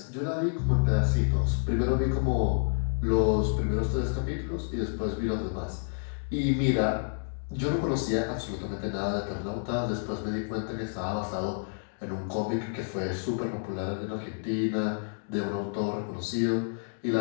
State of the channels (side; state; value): right; silent; digital silence